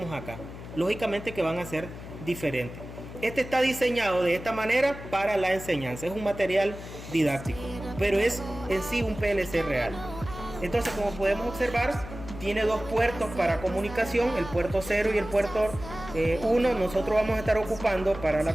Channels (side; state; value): left; noise; hum, 12 dB below the sound